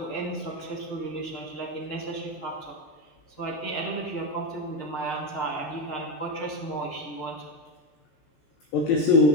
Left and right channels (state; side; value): late; right; 13 ms